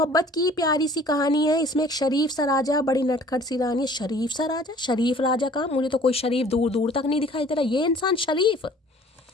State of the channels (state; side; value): normal; both; correlation 0.52